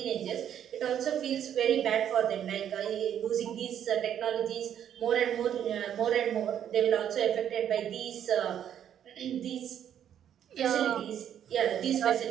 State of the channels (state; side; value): quieter; left; 9.7 dB